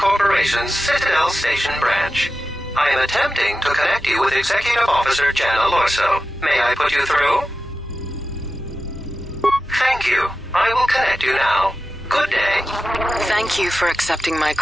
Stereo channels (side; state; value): both; normal; correlation 0.92